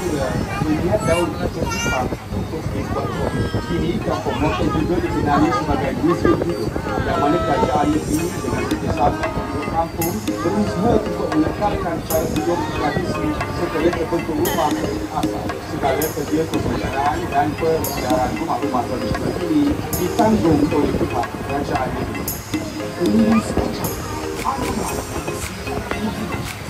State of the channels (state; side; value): identical; both; correlation 1.00